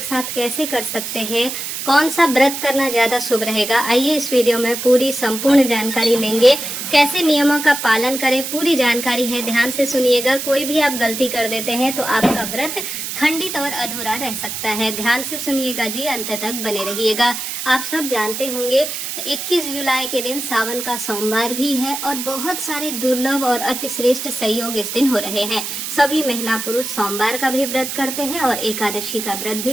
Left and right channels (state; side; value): noise; right; hiss, 5 dB below the sound